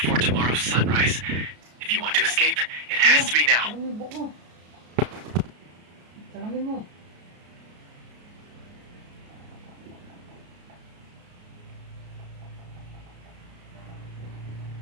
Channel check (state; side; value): late; left; 33 ms